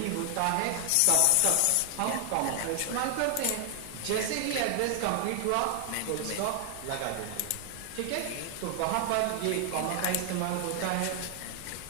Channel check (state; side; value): different; both; correlation 0.00